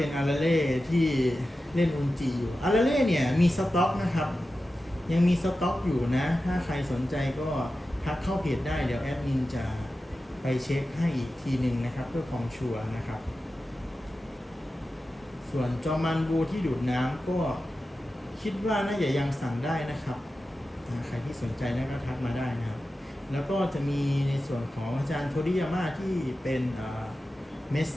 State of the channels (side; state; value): both; normal; correlation 0.93